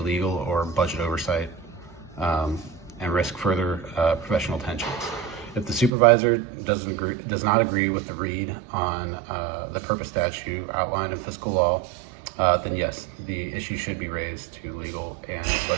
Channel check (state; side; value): drops out; left; at 5.9 s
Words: or budget oversight and risk further professional tensions. If the supervisor does not agree with the read on the purpose statute outlined in fiscal law, then yes, the issue should be raised to legal and